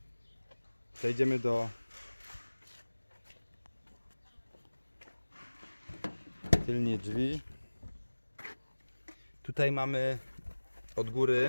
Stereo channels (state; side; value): inverted; both; correlation -1.00